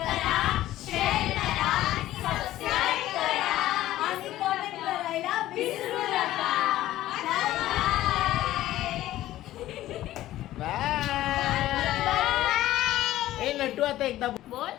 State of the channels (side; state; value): right; quieter; 14.6 dB